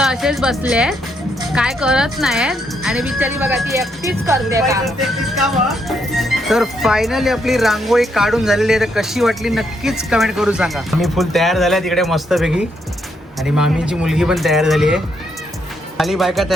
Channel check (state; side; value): normal; both; correlation 0.76